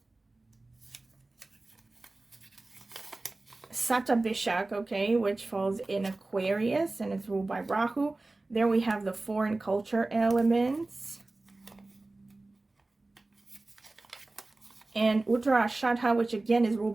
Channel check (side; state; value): left; quieter; 3.1 dB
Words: Satabhishak, okay, which falls in Aquarius and it's ruled by Rahu. There we have the foreign culture elements. And Uttarashadha, which again is ruled